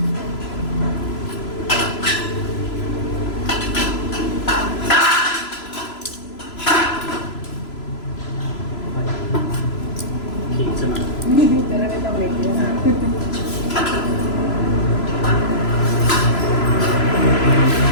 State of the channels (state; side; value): late; right; 3.0 ms